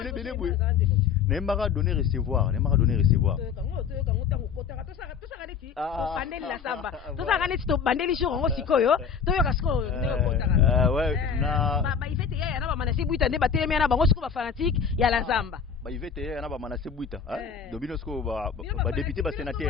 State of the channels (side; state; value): right; quieter; 6.7 dB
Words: bele boye na mbaka donner recevoir bandeli la samba tosaka neti to bandeli jour ngo sikoyo toyoka siko ndeko kotaka ouais na ba ivete ya na ba manasi buita nde batelemi na bango siko ba fanatique ya la zamba ba ivete ya na ba manasi buita dobino siko ba député ba